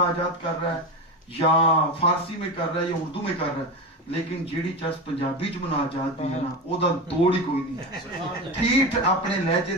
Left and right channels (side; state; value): both; normal; correlation 0.21